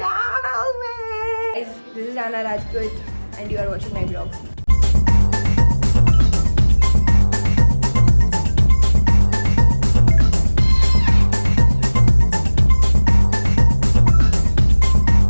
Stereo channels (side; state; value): both; inverted; correlation -1.00